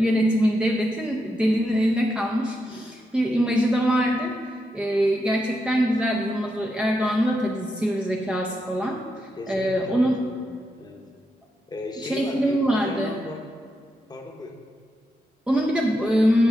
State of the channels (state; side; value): normal; both; correlation 0.84